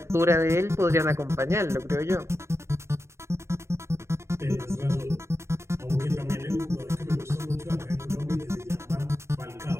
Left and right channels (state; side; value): late; left; 0.13 ms